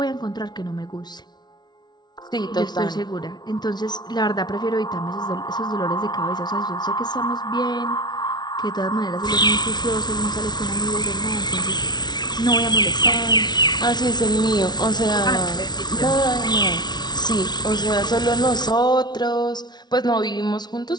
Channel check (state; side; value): late; right; 0.20 ms